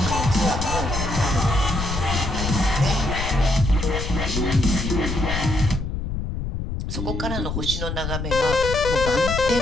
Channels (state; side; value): noise; left; rumble, 4 dB below the sound